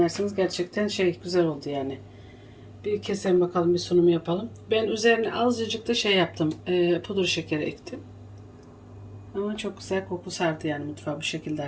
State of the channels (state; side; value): identical; both; correlation 1.00